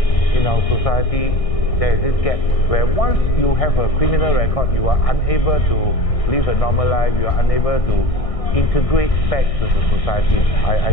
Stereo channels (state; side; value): late; right; 1.6 ms